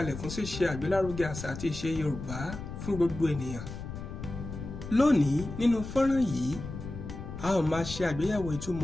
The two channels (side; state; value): left; noise; rumble, 9 dB below the sound